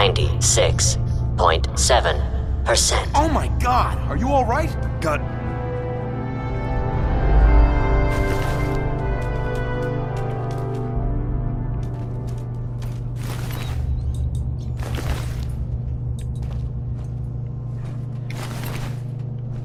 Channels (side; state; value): both; identical; correlation 1.00